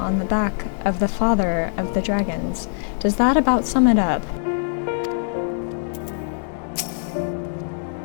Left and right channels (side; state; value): right; silent; digital silence